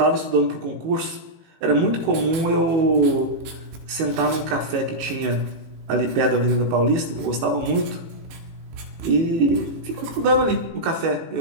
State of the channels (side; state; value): left; late; 18 ms